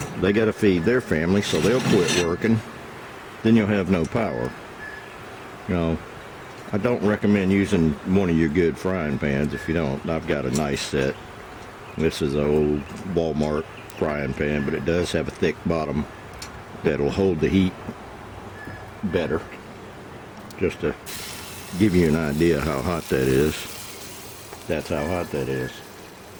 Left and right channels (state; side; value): identical; both; correlation 1.00